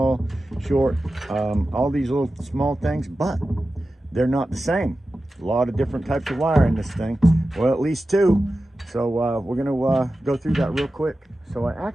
short, all these little small things, but they're not the same. A lot of different types of wire in this thing. Well, at least two. So we're going to go through that real quick. So I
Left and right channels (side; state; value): both; normal; correlation 0.93